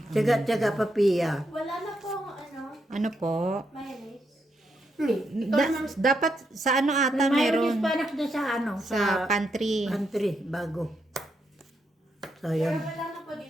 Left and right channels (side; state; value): both; normal; correlation 0.80